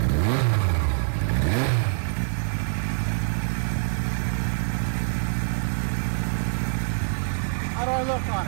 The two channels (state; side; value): silent; left; 62 dB below the other